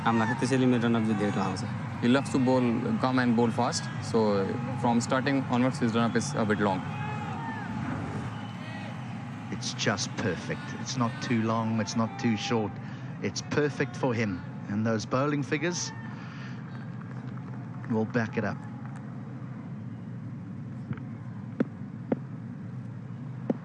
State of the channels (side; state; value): both; identical; correlation 1.00